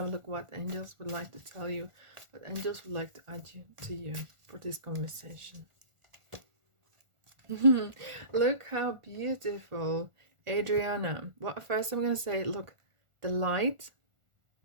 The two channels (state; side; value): late; left; 1.4 ms